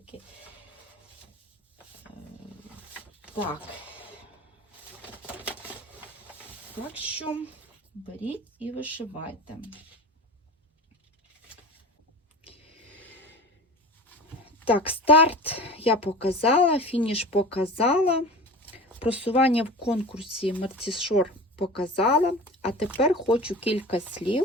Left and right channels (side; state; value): both; normal; correlation 0.34